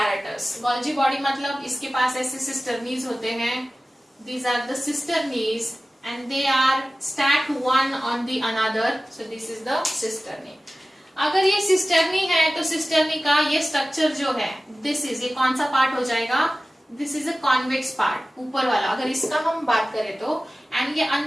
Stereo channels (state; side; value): normal; both; correlation 0.96